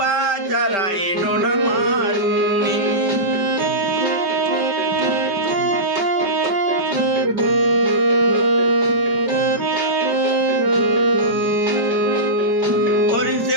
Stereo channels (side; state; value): left; late; 5.1 ms